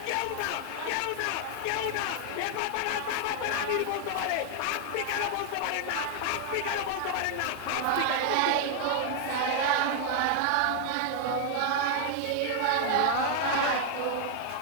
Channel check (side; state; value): both; different; correlation 0.00